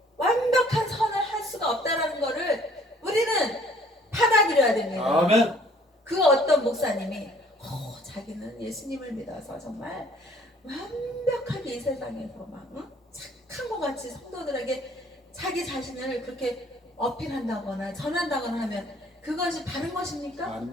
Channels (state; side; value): normal; both; correlation 0.58